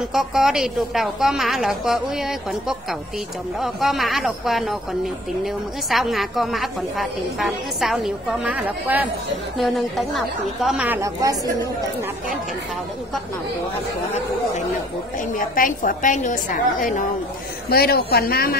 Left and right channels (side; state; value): both; normal; correlation 0.55